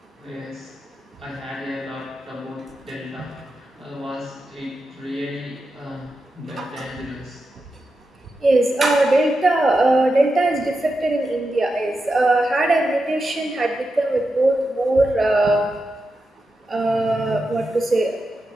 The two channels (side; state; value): both; normal; correlation 0.89